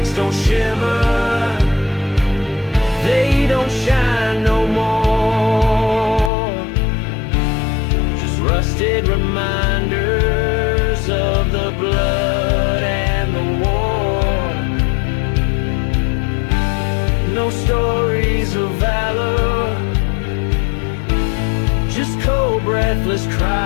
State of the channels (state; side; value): drops out; right; at 6.3 s